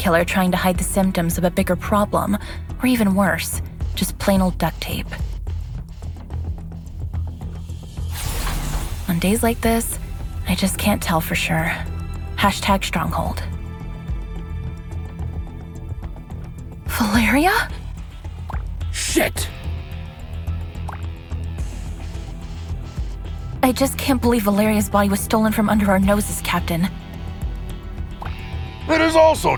trying to hide the symptoms of a bigger problem? Or even worse, just plain old duct tape? On days like this, I just can't tell for sure. Hashtag Stronghold. Valeria? Shit! I just can't believe Valeria's body was stolen from under our noses, Captain. It is also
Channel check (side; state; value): both; identical; correlation 1.00